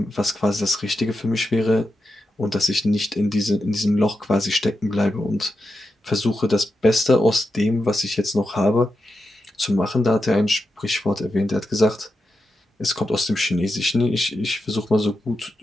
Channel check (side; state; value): both; normal; correlation 0.88